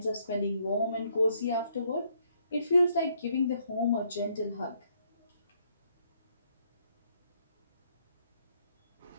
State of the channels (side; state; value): both; inverted; correlation -0.71